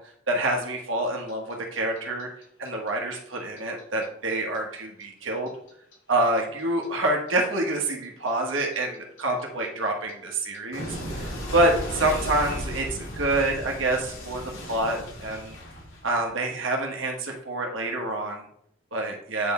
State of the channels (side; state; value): both; normal; correlation 0.13